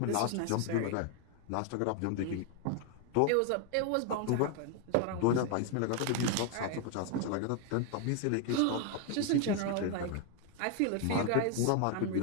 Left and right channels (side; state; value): both; different; correlation 0.01